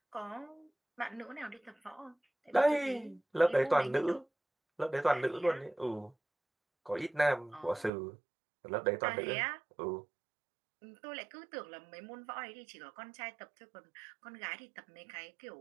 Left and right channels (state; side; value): drops out; left; at 7.9 s